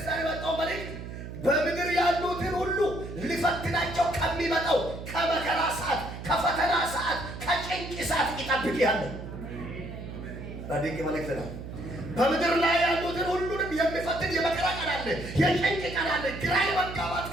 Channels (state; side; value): noise; right; hum, 10 dB below the sound